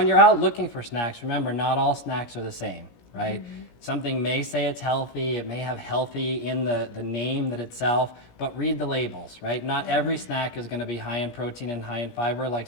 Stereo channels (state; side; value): late; right; 17 ms